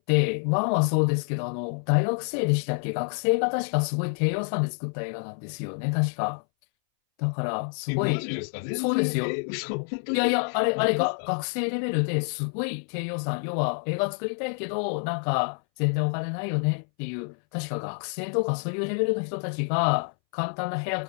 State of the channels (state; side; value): silent; right; 60 dB below the other